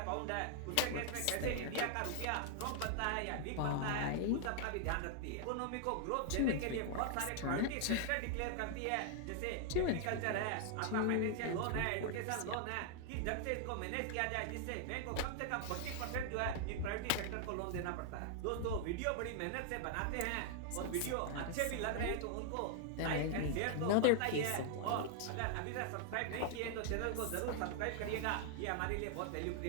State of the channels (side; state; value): both; different; correlation 0.00